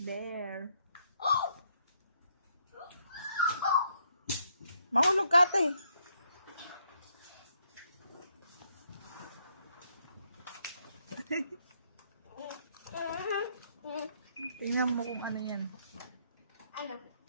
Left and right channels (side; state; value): both; inverted; correlation -0.73